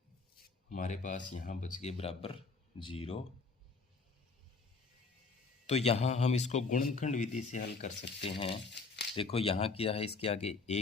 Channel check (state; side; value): quieter; right; 4.2 dB